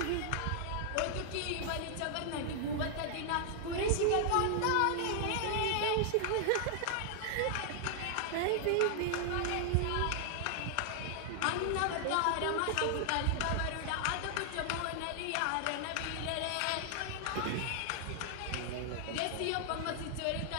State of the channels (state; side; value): different; both; correlation 0.00